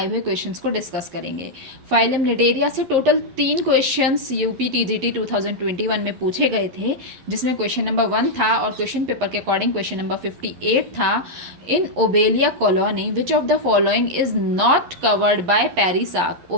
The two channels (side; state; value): left; late; 11 ms